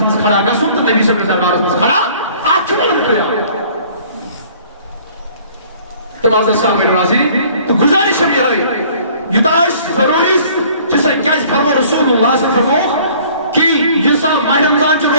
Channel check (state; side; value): inverted; both; correlation -0.54